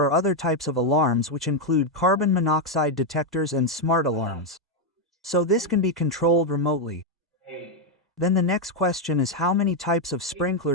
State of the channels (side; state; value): both; normal; correlation 0.03